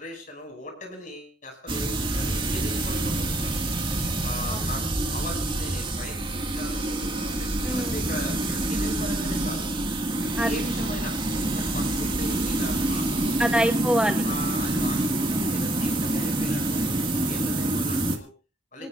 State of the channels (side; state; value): both; normal; correlation 0.69